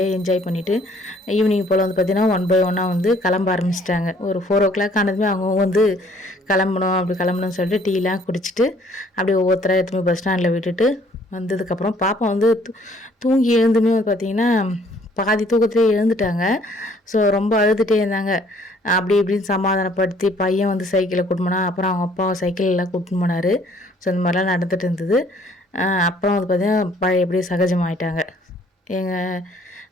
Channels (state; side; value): normal; both; correlation 0.60